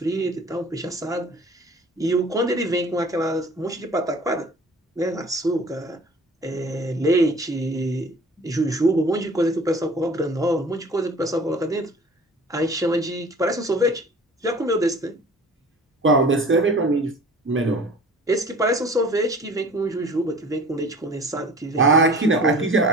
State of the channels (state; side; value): normal; both; correlation 0.45